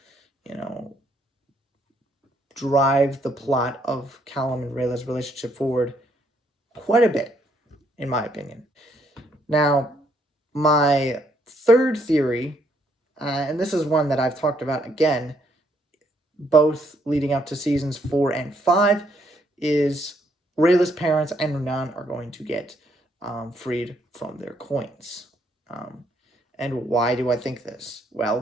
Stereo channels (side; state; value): both; normal; correlation 0.71